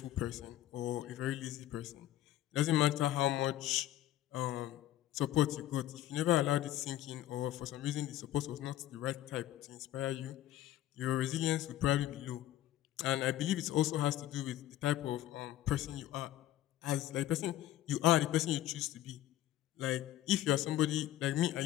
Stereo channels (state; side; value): quieter; right; 13.4 dB